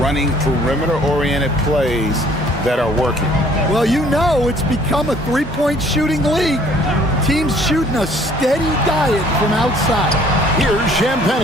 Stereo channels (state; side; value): normal; both; correlation 0.57